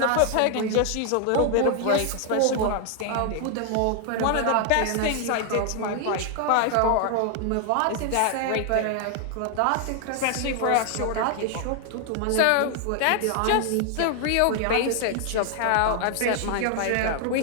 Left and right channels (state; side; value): different; both; correlation 0.00